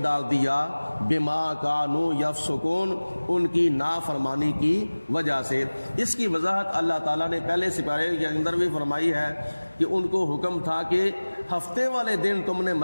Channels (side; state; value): both; inverted; correlation -1.00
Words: دیا، بما کانوا یفسقون، ان کی نافرمانی کی وجہ سے۔ اس کی وضاحت اللہ تعالیٰ نے پہلے سپارے کے اندر بھی فرمائی ہے کہ ان کو حکم تھا کہ ہفتے والے دن تم نے